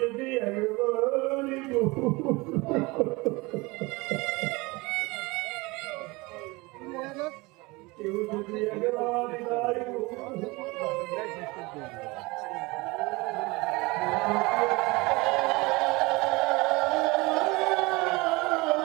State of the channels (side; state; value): left; quieter; 24.0 dB